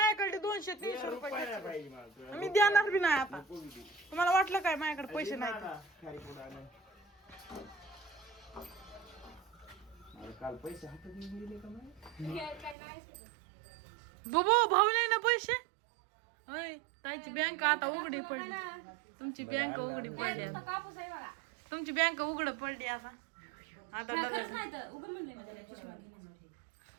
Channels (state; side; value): drops out; left; at 12.8 s